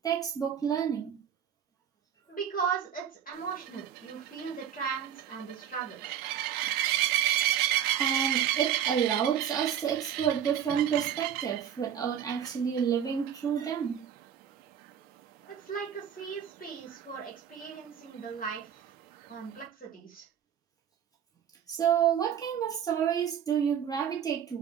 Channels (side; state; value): left; quieter; 9.0 dB